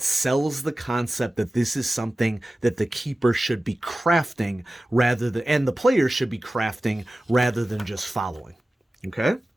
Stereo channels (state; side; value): normal; both; correlation 0.96